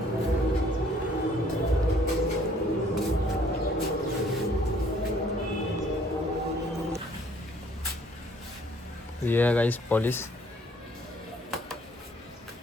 ये है गाइस पॉलिश।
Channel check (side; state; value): both; normal; correlation 0.60